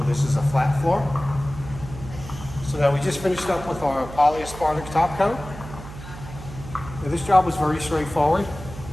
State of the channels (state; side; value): noise; right; hum, 13 dB below the sound